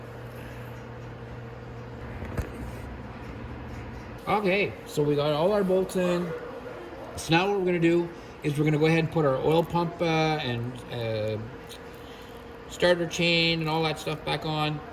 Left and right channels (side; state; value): both; identical; correlation 1.00